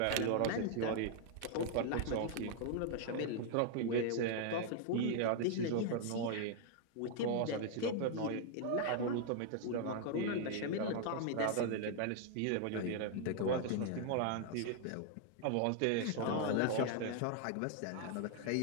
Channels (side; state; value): both; different; correlation 0.00